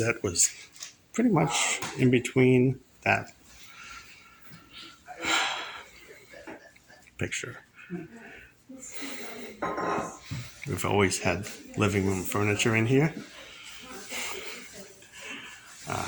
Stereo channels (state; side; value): identical; both; correlation 1.00